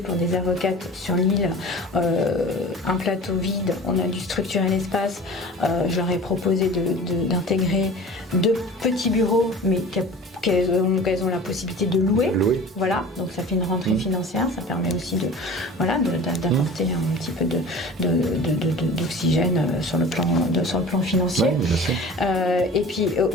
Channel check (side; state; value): both; normal; correlation 0.39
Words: des avocates sur l'île, un plateau vide, on a dû structurer l'espace. Je leur ai proposé d'intégrer 2 petits bureaux, mais qu'elles ont la possibilité de louer. Voilà, donc ça fait une rentrée financière, ça permet aussi d'apporter un petit peu d'oxygène sur le plan financier. Et puis